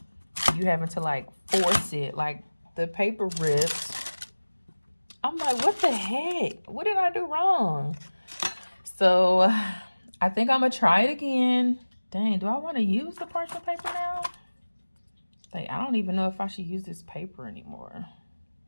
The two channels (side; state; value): both; inverted; correlation -1.00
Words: you having to, like, force it. Like, the paper rips. I'm like, what the heck? What did I do wrong? So, I think I'm going to try it again. Dang, do I want to use the parchment paper now? Like, I don't even know if I should use this paper anymore.